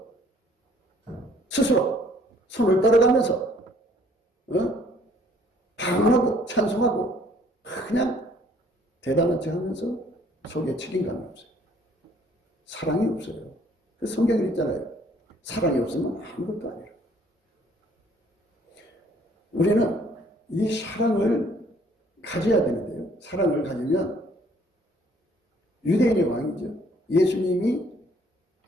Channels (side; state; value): both; normal; correlation 0.61